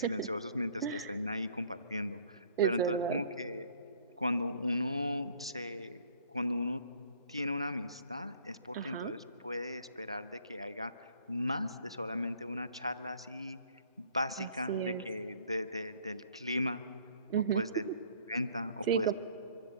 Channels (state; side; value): inverted; both; correlation -0.57